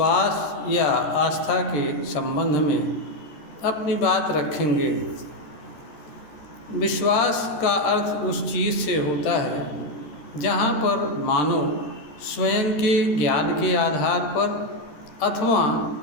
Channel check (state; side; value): late; right; 13 ms